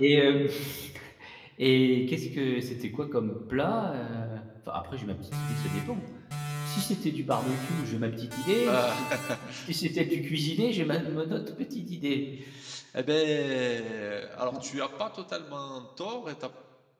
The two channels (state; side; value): identical; both; correlation 1.00